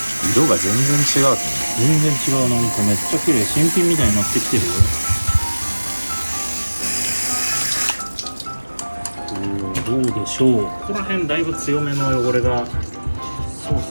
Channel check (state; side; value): inverted; both; correlation -1.00